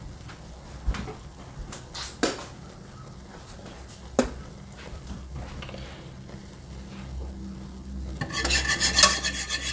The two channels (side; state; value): both; identical; correlation 1.00